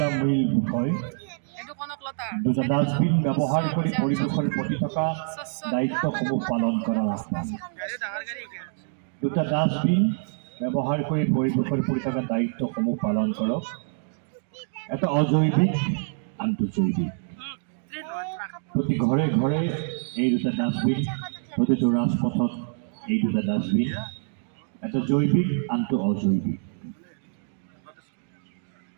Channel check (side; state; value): left; silent; digital silence